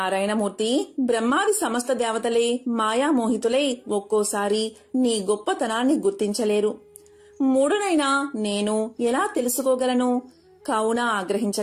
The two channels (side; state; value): both; identical; correlation 1.00